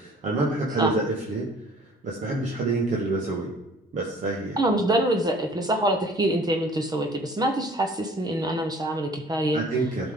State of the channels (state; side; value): normal; both; correlation 0.52